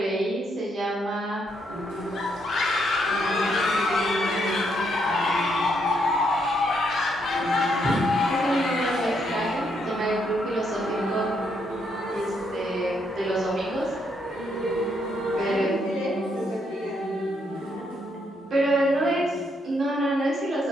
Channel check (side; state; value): both; normal; correlation 0.75